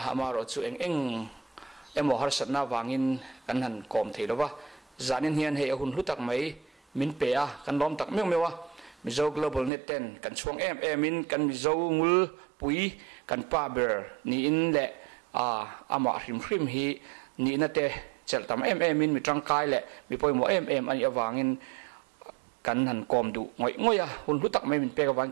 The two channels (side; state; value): left; drops out; at 9.7 s